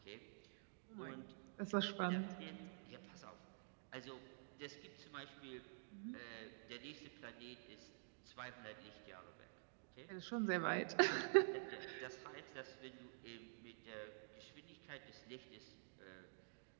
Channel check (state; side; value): silent; left; digital silence